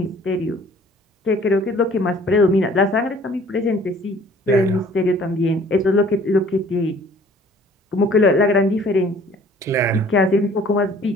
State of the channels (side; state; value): both; normal; correlation 0.54